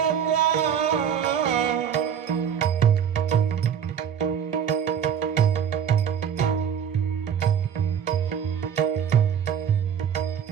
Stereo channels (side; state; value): left; quieter; 8.2 dB